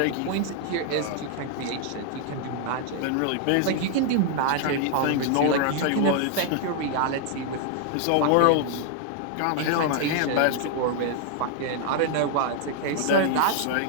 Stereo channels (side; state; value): both; different; correlation 0.00